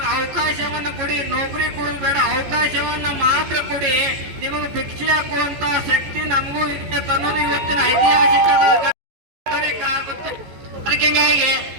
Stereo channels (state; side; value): late; left; 14 ms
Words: ಅವಕಾಶವನ್ನ ಕೊಡಿ, ನೌಕರಿ ಕೊಡೋದು ಬೇಡ, ಅವಕಾಶವನ್ನ ಮಾತ್ರ ಕೊಡಿ. ನಿಮಗೆ ಭಿಕ್ಷೆ ಹಾಕುವಂತ ಶಕ್ತಿ ನಮಗೂ ಇದೆ ಅನ್ನೋದು ಇವತ್ತಿನ ಐತಿಹಾಸಿಕ ಆಗುತ್ತೆ. ಅದಕ್ಕೆ ಹಿಂಗಾಗಿ